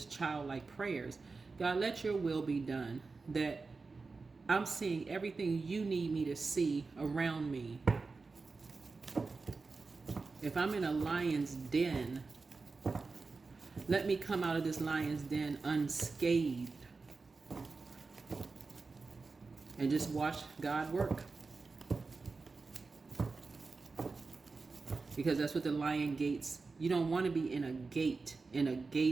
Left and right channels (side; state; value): left; quieter; 4.1 dB